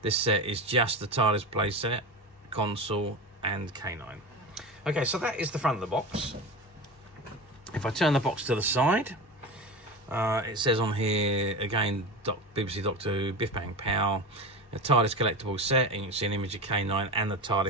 This set is just the TARDIS playset, console and K9. Okay, so that is the front of the box. If I turn the box to the side, it says on here again BBC Doctor Who, Biff Bang Pow, a TARDIS collectible set, and you can see an image of K9 and the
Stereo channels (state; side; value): normal; both; correlation 0.26